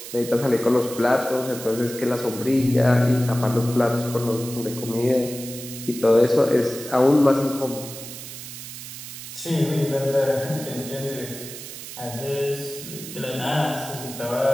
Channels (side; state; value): right; noise; hiss, 11 dB below the sound